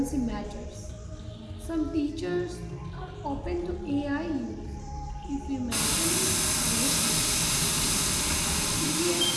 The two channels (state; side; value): identical; both; correlation 1.00